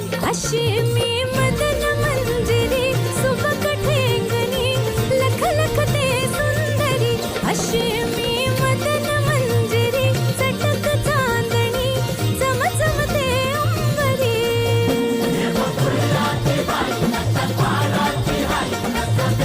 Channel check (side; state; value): both; identical; correlation 1.00